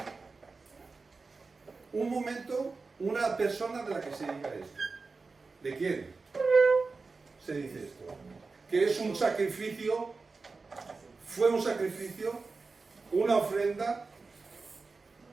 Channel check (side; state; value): left; quieter; 4.1 dB